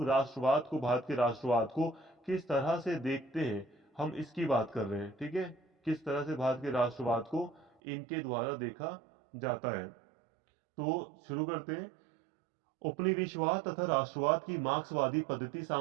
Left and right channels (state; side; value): drops out; left; at 7.7 s